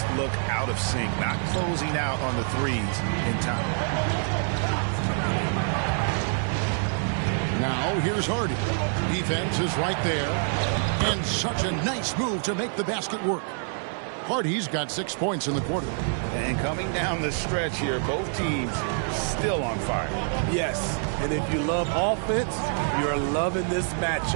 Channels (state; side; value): silent; left; 58 dB below the other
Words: look out of sync, not closing out on the 3s in time. Now, here's Hardy. Defense is right there. And such a nice move to make the basket work. Hardy's got 6 points in the quarter. And coming down the stretch here, both teams still on fire. Yes, and if you love offense, you're loving this